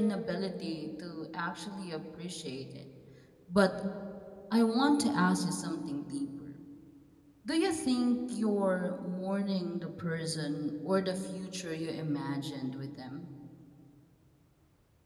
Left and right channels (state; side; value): identical; both; correlation 1.00